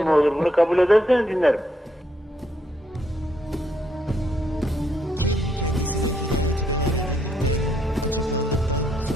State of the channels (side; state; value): both; normal; correlation 0.75